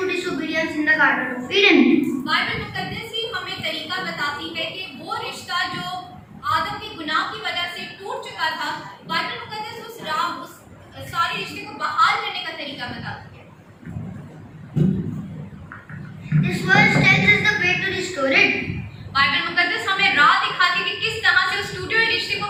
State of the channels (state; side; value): identical; both; correlation 1.00